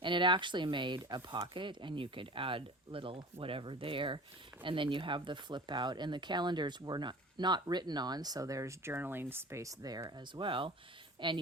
And it actually made a pocket, and you could add little whatever there, and then you have the flip out, and the calendars were not written on, so there's journaling space there as well, and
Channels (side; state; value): both; normal; correlation 0.38